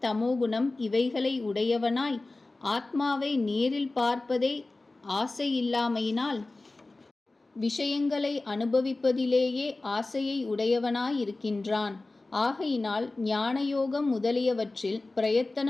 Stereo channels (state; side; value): quieter; right; 3.1 dB